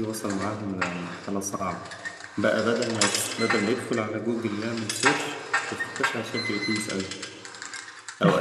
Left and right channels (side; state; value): both; identical; correlation 1.00